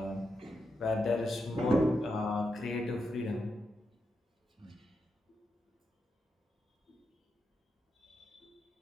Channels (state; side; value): normal; both; correlation 0.85